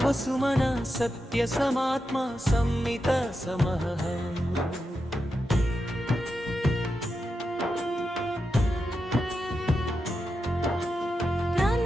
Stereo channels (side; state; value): both; normal; correlation 0.88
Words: వసుమన సత్య సమాత్మ సంమిత సమః